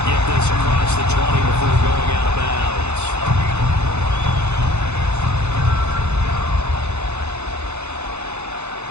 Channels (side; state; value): left; late; 0.81 ms